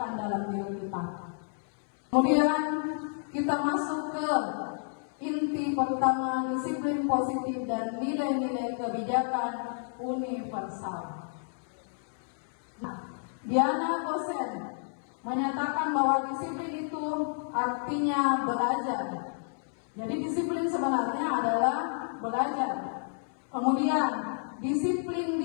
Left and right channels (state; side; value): silent; right; 58 dB below the other